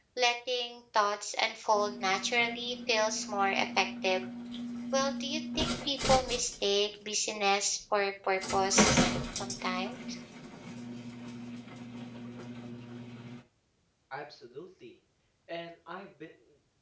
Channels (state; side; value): identical; both; correlation 1.00